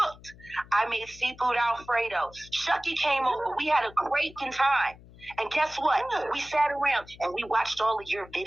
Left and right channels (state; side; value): noise; left; hum, 21 dB below the sound